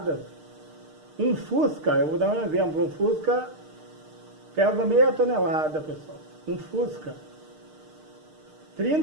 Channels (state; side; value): late; left; 6.5 ms